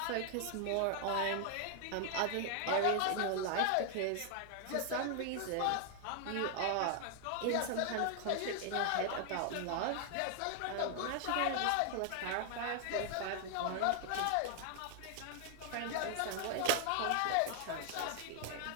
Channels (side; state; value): both; different; correlation 0.00